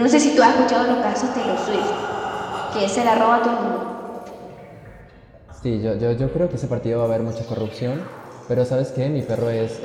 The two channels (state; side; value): identical; both; correlation 1.00